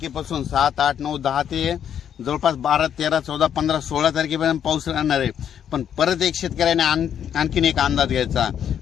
7, 8, 9, 10 ते जवळपास 12, 13, 14, 15, 16 तारखेपर्यंत पाऊस राहणार आहे। पण परत एक शेतकऱ्याने आणखीन एक अंदाज घ्यायचा।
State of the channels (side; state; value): right; quieter; 9.1 dB